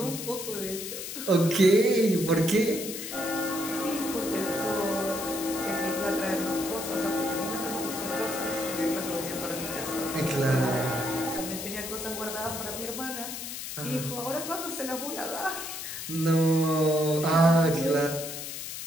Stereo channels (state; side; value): noise; left; hiss, 7 dB below the sound